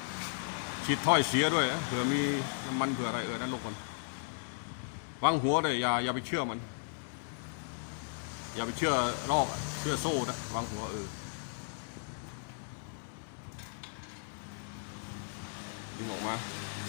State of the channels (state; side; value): silent; right; digital silence